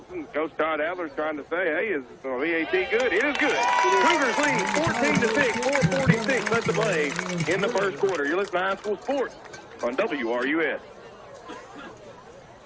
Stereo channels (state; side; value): identical; both; correlation 1.00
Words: Coach Todd Adler's trying to say, hey, is the PAT good? It is good. Cougars lead 14-6, 4:46 left to play in the 1st quarter. You're listening to High School Sports on WRUS.